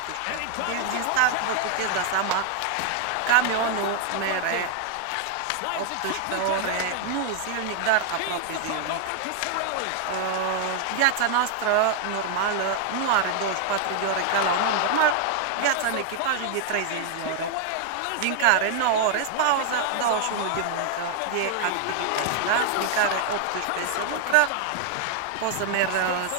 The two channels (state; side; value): different; both; correlation 0.00